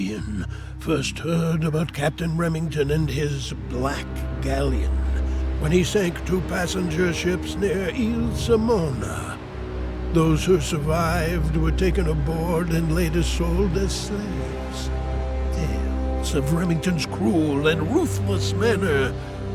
Caribbean first heard about Captain Remington and his Black Galleon when he sank 2 passenger ships near Ile Simona. Those who survived were taken aboard and later sold as slaves. Tales of Remington's cruel and ruthless manner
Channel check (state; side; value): identical; both; correlation 1.00